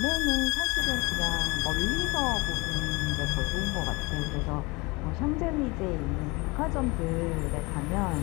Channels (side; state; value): right; quieter; 25.4 dB